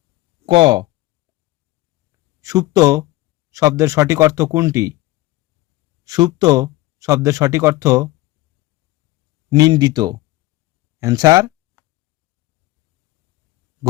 ক। সুপ্ত শব্দের সঠিক অর্থ কোনটি? সুপ্ত শব্দের সঠিক অর্থ নিন্দিত। অ্যান্সার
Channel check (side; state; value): right; quieter; 19.0 dB